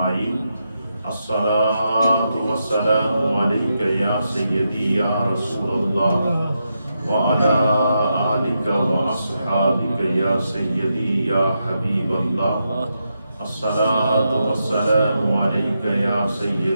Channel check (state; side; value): inverted; both; correlation -0.84